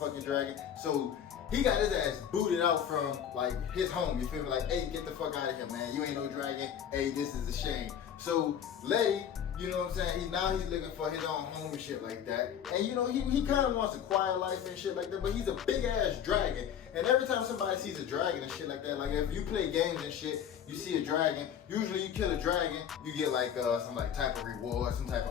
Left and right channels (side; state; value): right; quieter; 8.9 dB